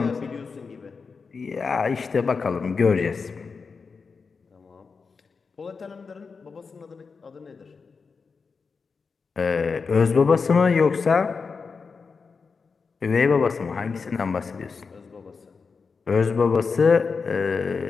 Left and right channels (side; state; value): right; quieter; 5.0 dB